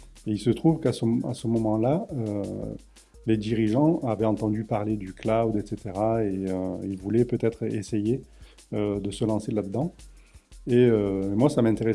Et il se trouve à ce moment-là, les dirigeants avaient entendu parler du cloud, etc. Et ils voulaient peut-être essayer de se lancer là-dedans. Et moi, ça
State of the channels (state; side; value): identical; both; correlation 1.00